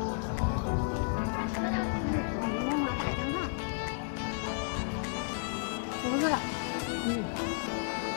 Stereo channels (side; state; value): right; silent; 56 dB below the other